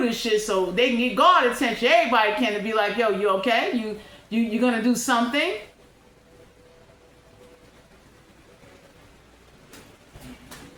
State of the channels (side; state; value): both; identical; correlation 1.00